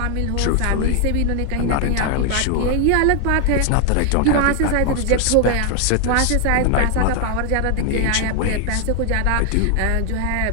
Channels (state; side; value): different; both; correlation 0.00